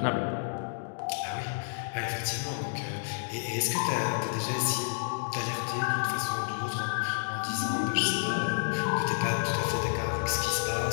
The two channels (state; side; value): silent; right; digital silence